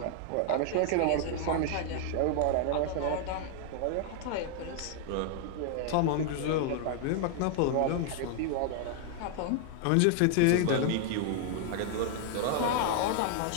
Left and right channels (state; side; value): different; both; correlation 0.00